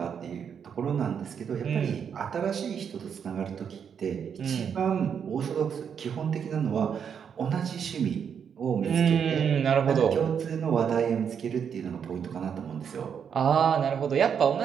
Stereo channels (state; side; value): quieter; left; 7.5 dB